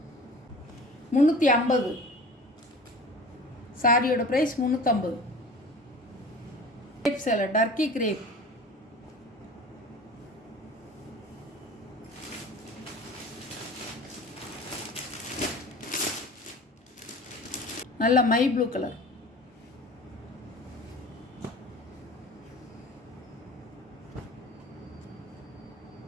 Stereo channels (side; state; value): both; normal; correlation 0.40